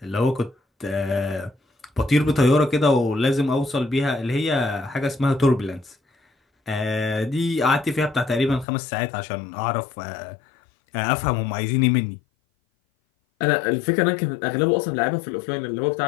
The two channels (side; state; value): right; drops out; at 8.7 s